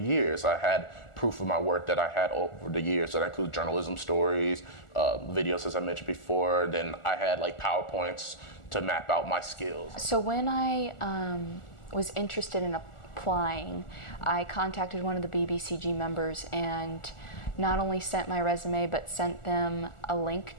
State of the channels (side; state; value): right; late; 1.4 ms